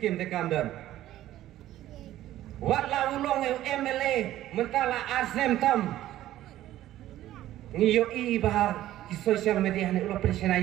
te kamdan wat la ulong MLA mentala asem tam ngiyo i bah di sosial media ne ulah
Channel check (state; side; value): quieter; left; 13.8 dB